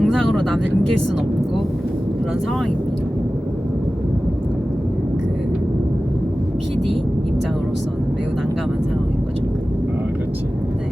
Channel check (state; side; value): normal; both; correlation 0.96